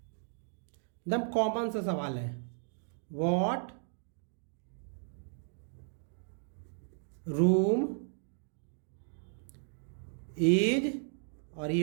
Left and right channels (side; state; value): left; silent; 54 dB below the other